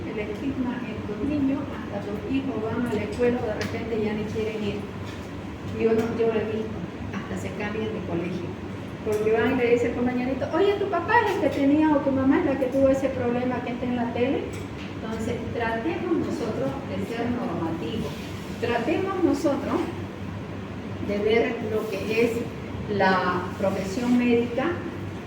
El estigma en tus niños, hasta tus hijos van a la escuela, de repente ya ni quieren ir. Yo lo he visto, hasta se cambian de colegio. Porque van y le dice el compañerito, oye, tu papá es el que tenía o tu mamá es la que tuvo ese problema que está en la tele. Entonces, tratemos nosotros de ser normativos. Tratemos nosotros de ver lo que es la profesión médica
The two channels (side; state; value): both; identical; correlation 1.00